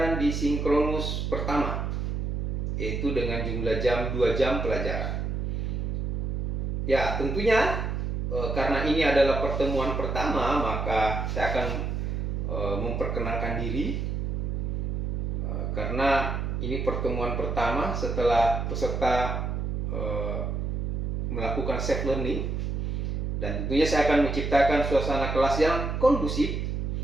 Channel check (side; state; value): right; noise; hum, 1 dB below the sound